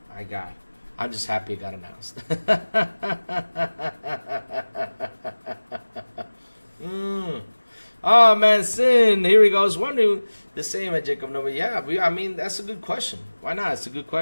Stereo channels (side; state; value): both; inverted; correlation -1.00